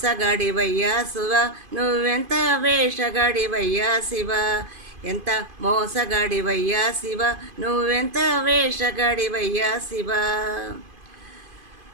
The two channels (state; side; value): late; left; 2.5 ms